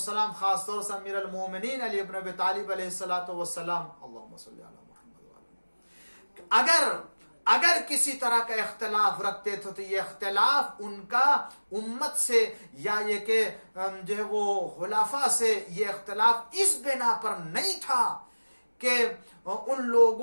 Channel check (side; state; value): both; inverted; correlation -1.00